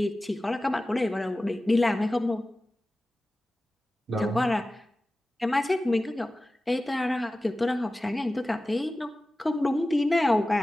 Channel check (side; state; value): both; normal; correlation 0.96